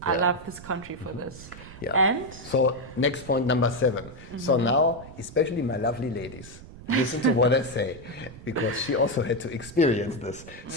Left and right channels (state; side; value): noise; right; rumble, 16 dB below the sound